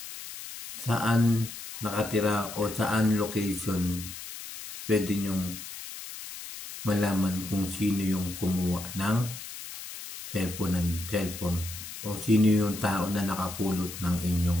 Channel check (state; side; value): noise; left; hiss, 11 dB below the sound